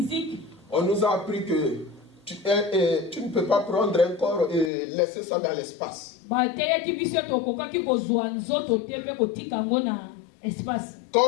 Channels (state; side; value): drops out; right; at 4.7 s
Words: on nous a appris que tu ne peux pas prendre un corps et laisser ça dans l'espace. bateyaki biso ete okokaki kozwa nzoto te mpe kotika yango na espace.